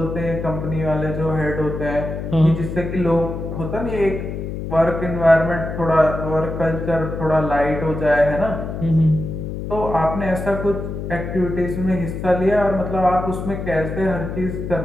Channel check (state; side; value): noise; left; hum, 6 dB below the sound